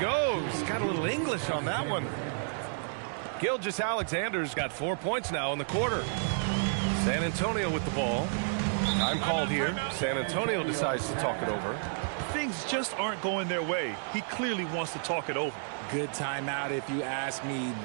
Got a little English on that one. Gilgeous-Alexander's got 4 points now in the quarter. San Antonio with the ball. Time called here. San Antonio decides to talk it over. Things just aren't going their way. He clearly wants to talk it over. Good timeout if you ask me.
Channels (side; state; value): left; silent; digital silence